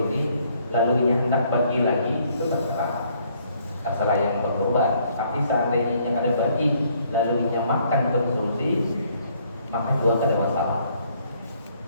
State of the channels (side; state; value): both; inverted; correlation -0.66